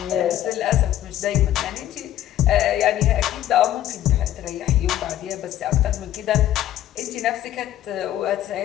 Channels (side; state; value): right; quieter; 12.5 dB